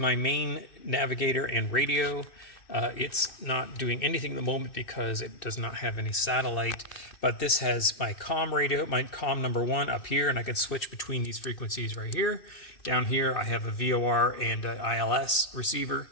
main navigator and radio. It's not doing anything at the moment because it does not have any satellite, but this has my comm radio, my comm number 1 up here, and I can switch between these frequencies right here. Down here I have a VOR and a ILS receiver,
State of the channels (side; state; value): right; late; 2.6 ms